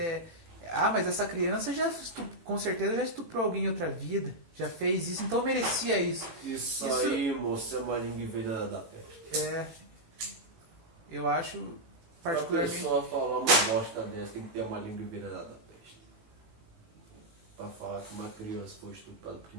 mas essa criança com certeza já estuprou alguém em outra vida, já fez isso, então merecia isso. Isso aí, moço, é uma língua envenenada da peste. Eu acho particularmente... Pra pessoa falar uma bosta dessa, tem que ter uma língua envenenada da peste. Pra falar que uma criança foi estuprada porque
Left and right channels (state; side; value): late; left; 18 ms